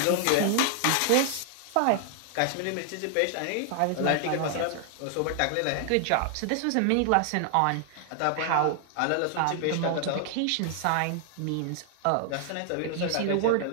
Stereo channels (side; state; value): both; different; correlation 0.00